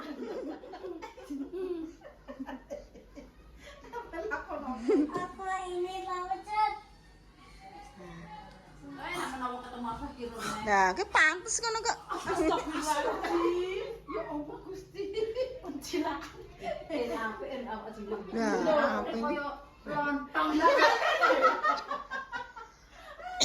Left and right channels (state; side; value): identical; both; correlation 1.00